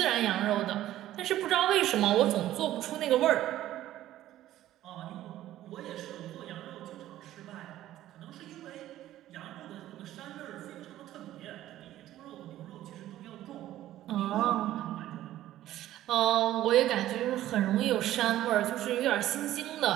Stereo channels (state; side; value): quieter; left; 13.7 dB